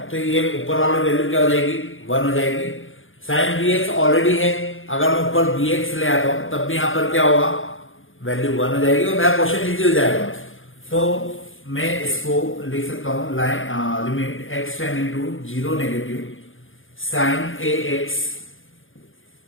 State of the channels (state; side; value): late; right; 0.58 ms